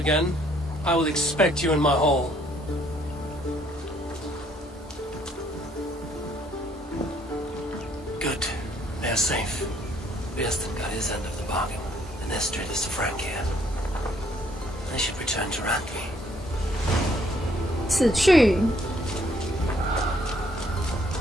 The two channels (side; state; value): both; normal; correlation 0.65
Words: I will expect you in my hall. Good. They are safe. Birston got his end of the bargain, and Estrid is the Frank here. They should return to Randvi. 死去。